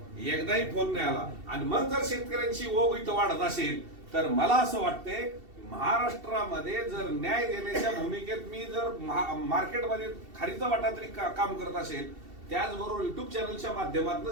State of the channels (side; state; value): left; late; 2.7 ms